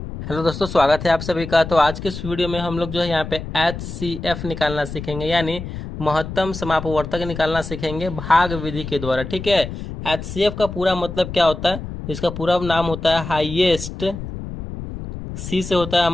Hello दोस्तों, स्वागत है आप सभी का। तो आज के इस वीडियो में हम लोग जो है यहाँ पे HCF निकालना सीखेंगे, यानी महत्तम समापवर्तक निकालना सीखेंगे भाग विधि के द्वारा। ठीक है। HCF का पूरा मतलब क्या होता है? इसका पूरा नाम होता है हाईएस्ट, C से होता है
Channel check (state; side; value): noise; left; rumble, 9 dB below the sound